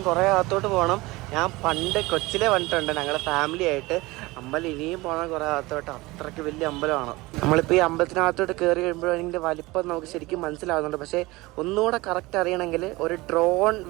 കുറേ അകത്തോട്ട് പോകണം. ഞാൻ പണ്ട് കൊച്ചിലെ വന്നിട്ടുണ്ട് ഞങ്ങളുടെ ഫാമിലി ആയിട്ട്. അമ്പലം ഇനിയും പോകണം കുറേ അകത്തോട്ട്. അത്രയ്ക്ക് വലിയ അമ്പലമാണ്. നമ്മളിപ്പോൾ ഈ അമ്പലത്തിനകത്തോട്ട് കയറി കഴിയുമ്പോഴും അതിൻ്റെ വലിപ്പം നമുക്ക് ശരിക്കും മനസ്സിലാവുന്നുണ്ട്. പക്ഷേ ഒന്നുകൂടെ കറക്റ്റ് അറിയണമെങ്കിൽ ഒരു ഡ്രോൺ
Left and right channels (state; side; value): quieter; left; 21.4 dB